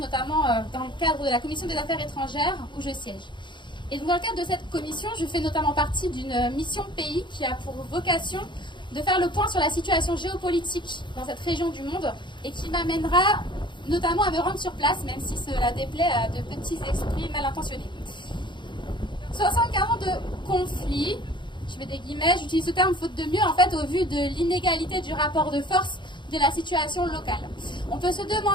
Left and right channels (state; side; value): late; right; 0.23 ms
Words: dans le cadre de la Commission des Affaires étrangères où je siège. Et donc dans le cadre de cette commission, je fais notamment partie d'une mission pays qui a pour vocation de faire le point sur la situation géopolitique dans cette région du monde et qui m'amènera notamment à me rendre sur place, même si cela déplaît à de petits esprits mal intentionnés. 75 ans de conflit, je mets des guillemets, j'utilise ce terme faute de mieux, en fait, au vu de l'inégalité du rapport de force de la situation locale. On peut se